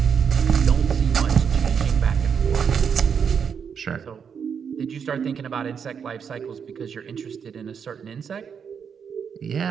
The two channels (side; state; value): left; quieter; 7.0 dB